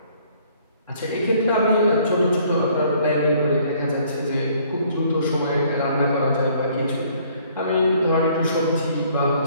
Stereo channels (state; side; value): inverted; both; correlation -0.61